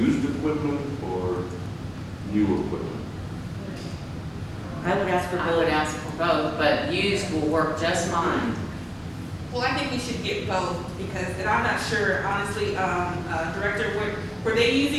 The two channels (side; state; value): both; identical; correlation 1.00